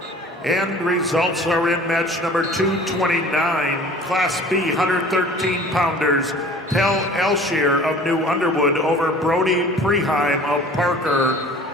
And results are in match number 229, Class B 113-pounders. Tel Elshier of New Underwood over Brody Preheim of Parker,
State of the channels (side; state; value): both; normal; correlation 0.46